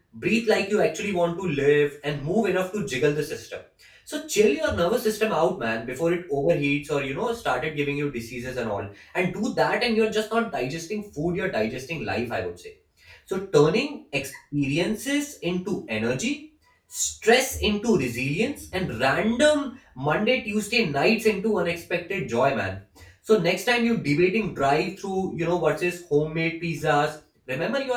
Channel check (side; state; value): both; identical; correlation 1.00